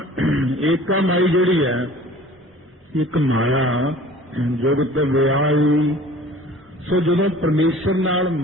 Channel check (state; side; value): normal; both; correlation 0.47